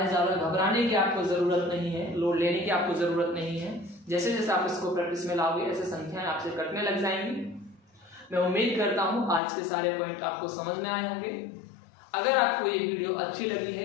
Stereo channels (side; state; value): right; drops out; at 9.4 s